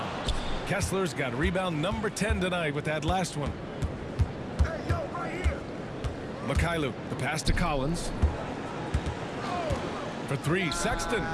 Kessler's got rebound number 10 tonight with that last one. Mikhailu, the pass to Collins. For 3, Sexton.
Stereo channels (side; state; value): both; identical; correlation 1.00